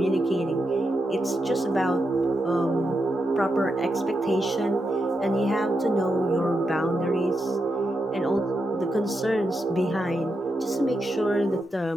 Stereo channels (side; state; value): both; normal; correlation 0.85